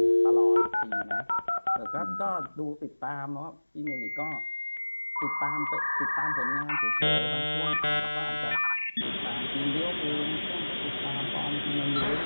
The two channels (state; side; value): inverted; both; correlation -1.00